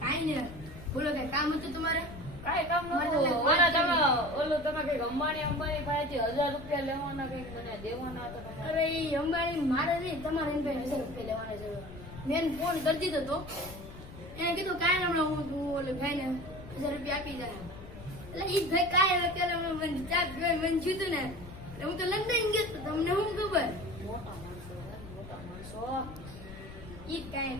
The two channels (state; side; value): noise; left; rumble, 14 dB below the sound